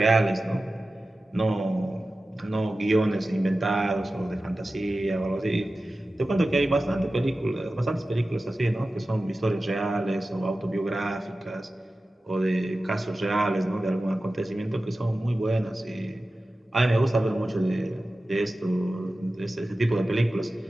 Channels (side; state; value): both; normal; correlation 0.95